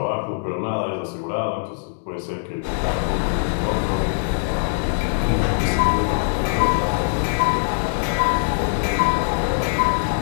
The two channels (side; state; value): right; silent; 64 dB below the other